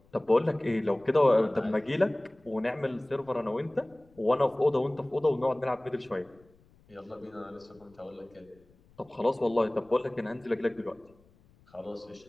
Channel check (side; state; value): left; noise; rumble, 30 dB below the sound